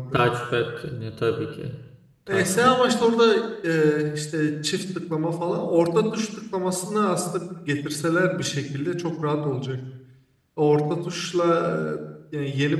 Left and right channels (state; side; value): identical; both; correlation 1.00